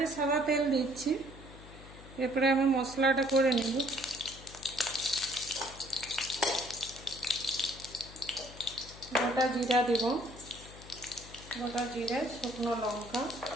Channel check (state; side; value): noise; left; hum, 17 dB below the sound